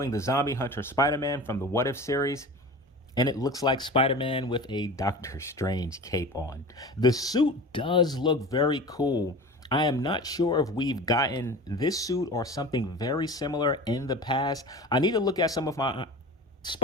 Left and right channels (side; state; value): both; normal; correlation 0.35